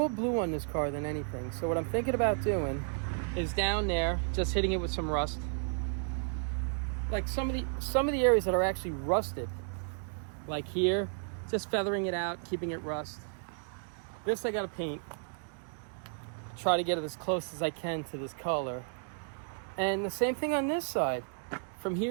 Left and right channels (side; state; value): left; silent; 56 dB below the other